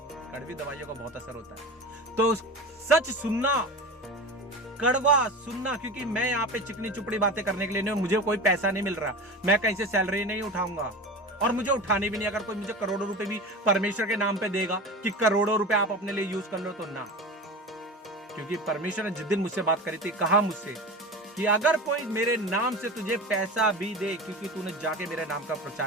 कड़वी दवाइयों का बहुत असर होता है। तो सच सुनना, कड़वा सुनना, क्योंकि मैं यहाँ पे चिकनी चुपड़ी बातें करने के लिए नहीं, मुझे कोई पैसा नहीं मिल रहा, मैं कहीं से सैलरी नहीं उठाऊंगा, और मुझे उठाने भी नहीं। अगर कोई मुझे करोड़ों रुपए भी परमेश्वर के नाम पे देगा कि करोड़ों रुपए आप अपने लिए यूज कर लो, तो ना। क्योंकि परमेश्वर ने जिस दिन मुझसे बात करी थी, कहा मुझसे कि अगर कोई मेरे नाम से तुझे पैसा भी दे, क्योंकि तूने जाके मेरे नाम का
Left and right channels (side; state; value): both; normal; correlation 0.30